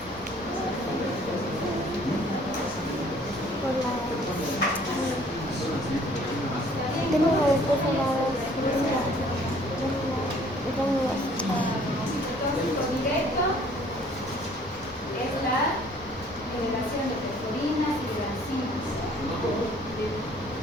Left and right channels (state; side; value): normal; both; correlation 0.57